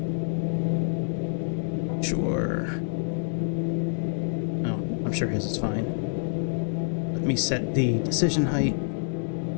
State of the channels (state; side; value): silent; right; 60 dB below the other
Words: Sure. Oh, I'm sure his is fine. Let me set the decision height.